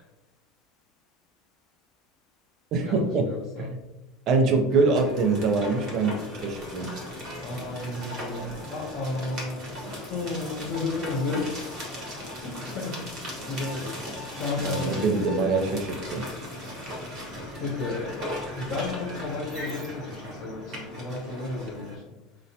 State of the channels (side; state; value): both; normal; correlation 0.32